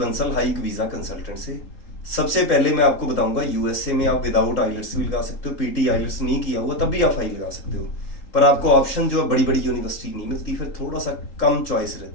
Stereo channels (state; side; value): late; right; 3.8 ms